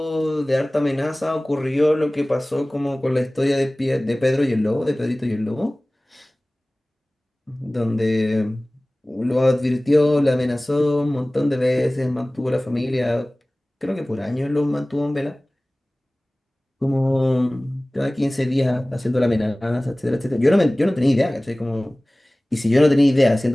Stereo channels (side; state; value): both; normal; correlation 0.98